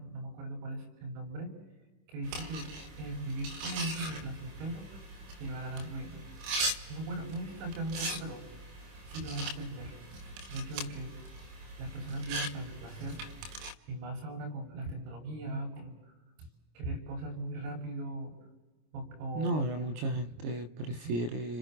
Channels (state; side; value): late; left; 26 ms